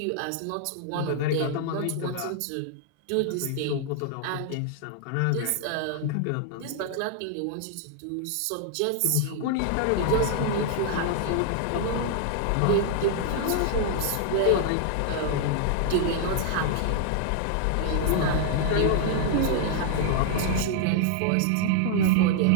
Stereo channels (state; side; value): different; both; correlation 0.00